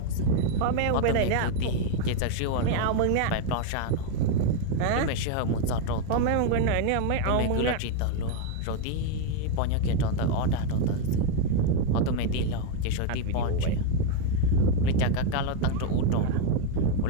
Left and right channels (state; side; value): different; both; correlation 0.01